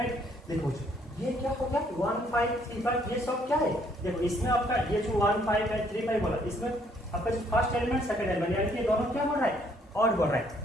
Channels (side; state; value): both; normal; correlation 0.66